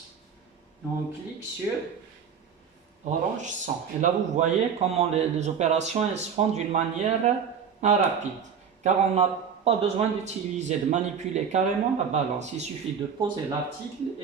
et on clique sur orange 100. Et là, vous voyez comment les opérations elles se font d'une manière rapide. Car on n'a pas besoin d'utiliser, de manipuler carrément la balance. Il suffit de poser l'article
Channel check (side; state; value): left; quieter; 7.0 dB